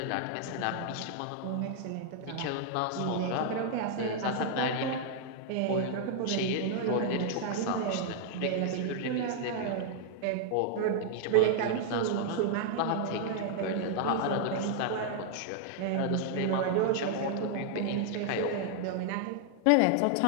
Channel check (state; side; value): different; both; correlation -0.01